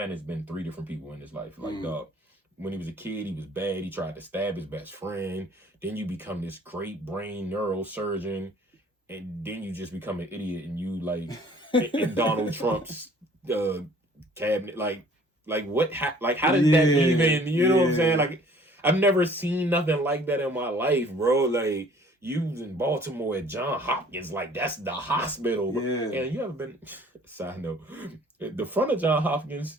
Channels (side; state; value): both; normal; correlation 0.54